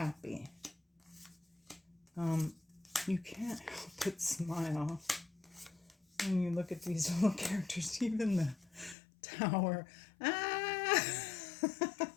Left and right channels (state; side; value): drops out; right; at 9.0 s